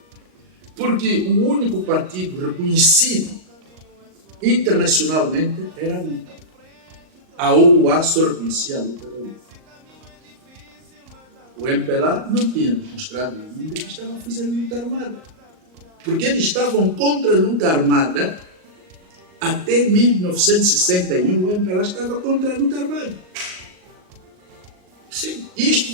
Porque o único partido reconhecido internacionalmente era a luta. A OUA só reconhecia a luta da luta. O MPLA não tinha demonstrado ainda que estava a fazer luta armada. Porque eles estavam contra a luta armada até 1961. O MPLA estava contra a luta armada. Sim, isto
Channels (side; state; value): left; late; 38 ms